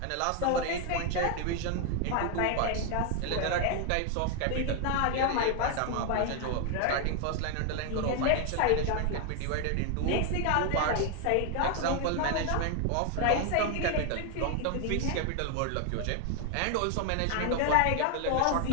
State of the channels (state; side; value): different; both; correlation 0.01